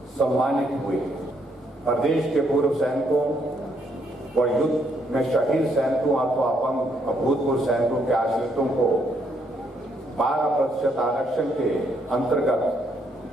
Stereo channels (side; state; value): both; normal; correlation 0.73